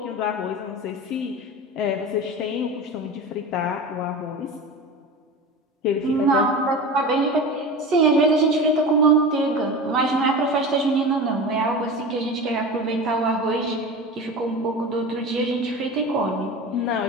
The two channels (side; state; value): both; normal; correlation 0.30